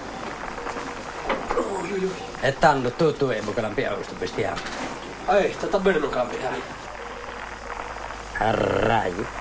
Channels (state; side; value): identical; both; correlation 1.00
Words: E tanto tu ei mukaan pian questo bestiame. Sta bene non cambiare. Arrai.